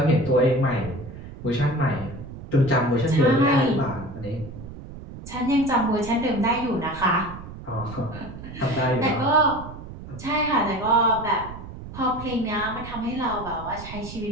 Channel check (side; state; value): right; noise; rumble, 13 dB below the sound